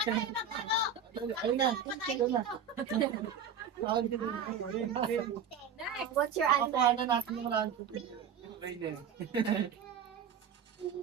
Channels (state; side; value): quieter; left; 7.0 dB